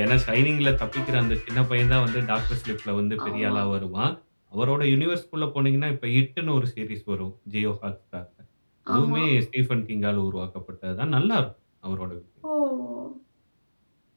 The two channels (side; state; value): both; inverted; correlation -1.00